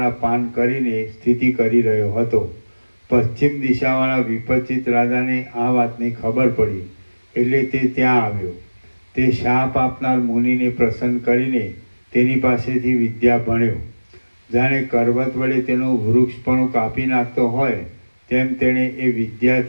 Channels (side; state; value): both; inverted; correlation -1.00